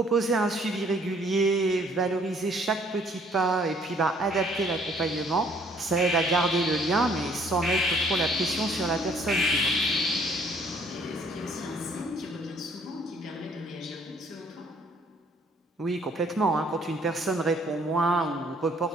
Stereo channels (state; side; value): normal; both; correlation 0.61